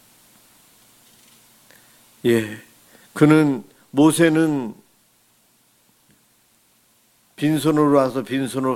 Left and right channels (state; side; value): identical; both; correlation 1.00